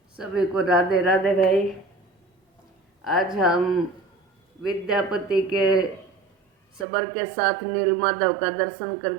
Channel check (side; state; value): left; drops out; at 6.9 s